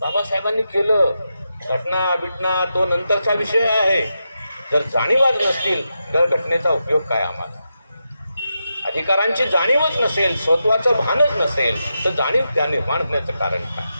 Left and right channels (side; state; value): both; inverted; correlation -0.87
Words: बाबासाहेबांनी केलं. घटना तो नंतरचा विषय आहे. जर जाणीवच नसतील तर घटनेचा उपयोग काय आम्हाला? अधिकारांची जाणीवच नसेल, स्वत्वाचं भानच नसेल तर जाणीव त्या निर्माण होण्याचं कारण काय?